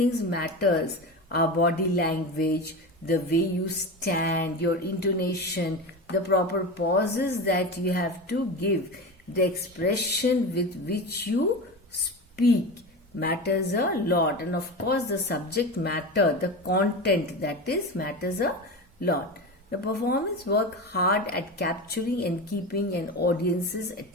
matters. Our body language, the way you stand, your intonation, the proper pauses that you have to give, the expression with which you speak matters a lot. And of course, the subject matter, the content that is matters a lot. The performance work hard at capturing and keeping an audience's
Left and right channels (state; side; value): normal; both; correlation 0.25